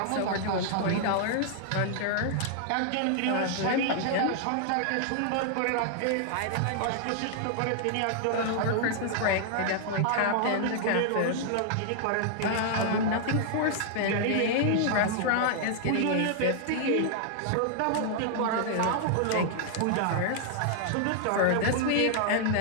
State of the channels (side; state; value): both; different; correlation -0.01